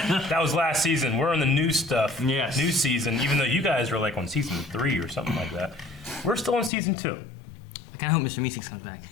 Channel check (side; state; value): right; drops out; at 6.7 s